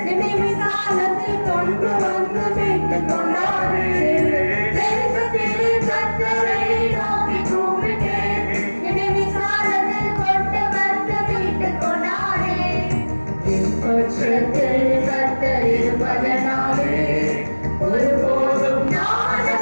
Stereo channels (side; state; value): both; inverted; correlation -1.00